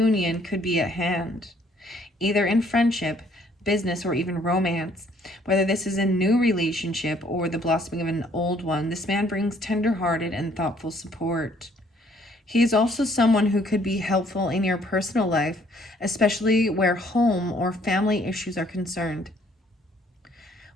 could be at hand, either in friendship, business, or even romance. Whether this is a new relationship or the blossoming of an old one, this man brings tender-hearted and thoughtful support. He is also someone who could be helpful in your personal life, especially where home or family issues are concerned.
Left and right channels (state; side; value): normal; both; correlation 0.63